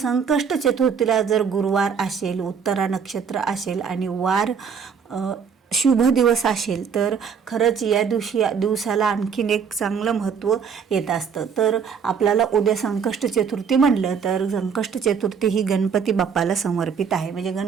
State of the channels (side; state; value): left; quieter; 6.5 dB